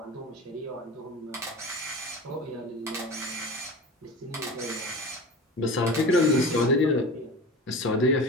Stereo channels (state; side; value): normal; both; correlation 0.32